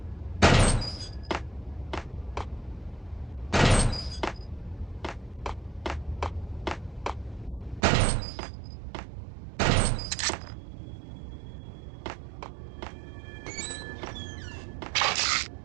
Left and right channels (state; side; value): drops out; left; at 7.8 s